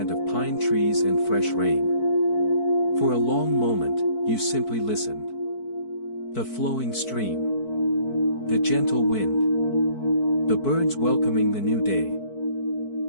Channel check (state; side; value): late; right; 4.6 ms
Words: of pine trees and fresh rain. For a long moment, you simply listened. The flowing stream. The gentle wind. The birds welcoming the new day.